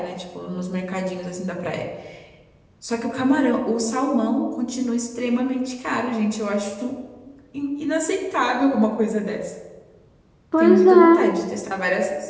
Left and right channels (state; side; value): identical; both; correlation 1.00